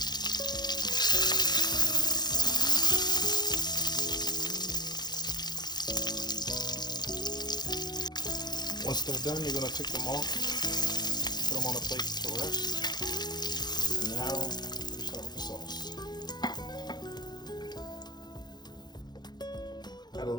Once they're done, you're going to take them off, put them on a plate to rest. And now we start with the sauce. Had a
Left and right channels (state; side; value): late; right; 0.20 ms